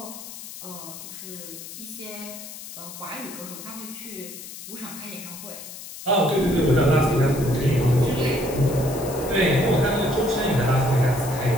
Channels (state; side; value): noise; left; hiss, 12 dB below the sound